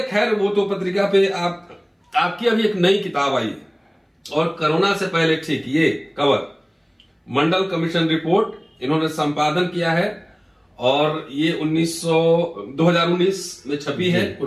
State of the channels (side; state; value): both; identical; correlation 1.00